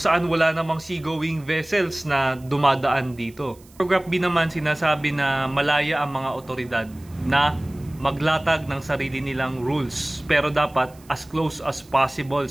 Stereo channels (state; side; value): noise; right; hiss, 27 dB below the sound